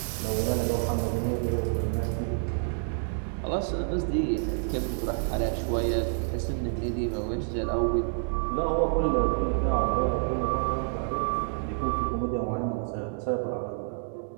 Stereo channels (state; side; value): silent; left; digital silence